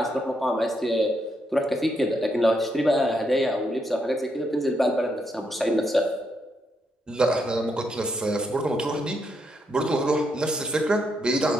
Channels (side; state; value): both; normal; correlation 0.79